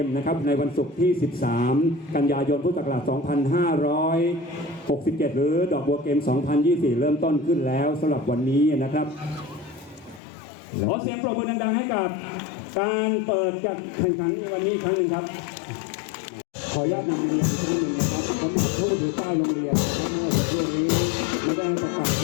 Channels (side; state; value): right; drops out; at 10.2 s